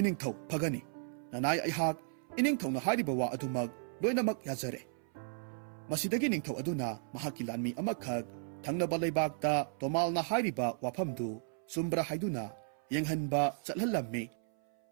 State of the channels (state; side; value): silent; left; 55 dB below the other